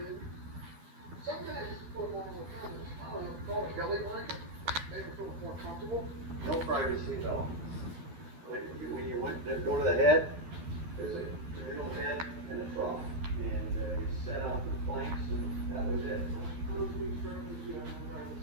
No privacy, no. When you went to go to the head, there's a real head and a trough. And you set out the planks and that was it.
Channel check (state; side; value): late; left; 12 ms